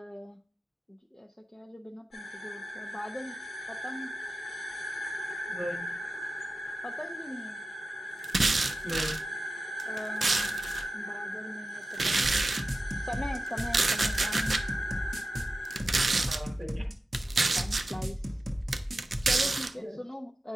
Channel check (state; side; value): normal; both; correlation 0.93